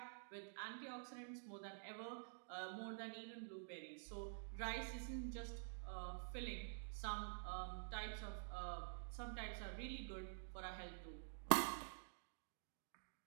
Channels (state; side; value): silent; left; digital silence